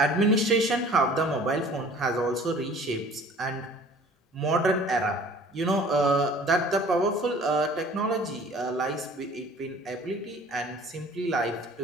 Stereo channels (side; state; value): both; normal; correlation 0.49